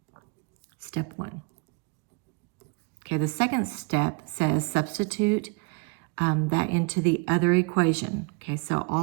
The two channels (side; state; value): left; quieter; 32.3 dB